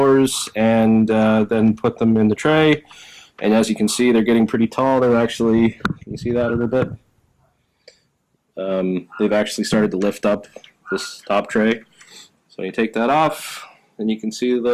and then put them in the tray. And as you can see, they're getting pretty tall. They're actually, can you see that a little bit? They've actually started to lift up this top tray. So you take that off, and you can see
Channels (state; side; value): identical; both; correlation 1.00